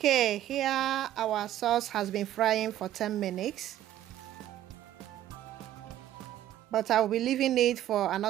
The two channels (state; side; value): quieter; left; 12.6 dB